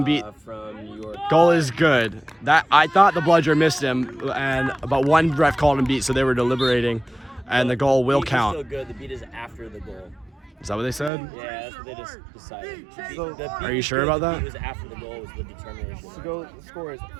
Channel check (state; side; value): drops out; left; at 11.1 s